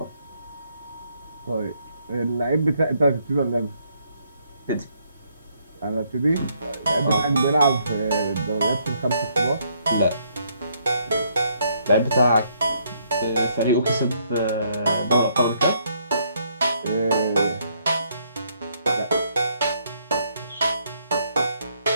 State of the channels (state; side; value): inverted; both; correlation -0.71